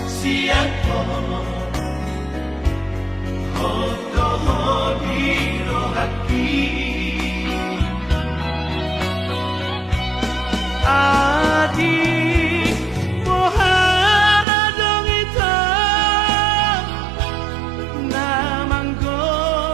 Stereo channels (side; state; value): left; drops out; at 14.5 s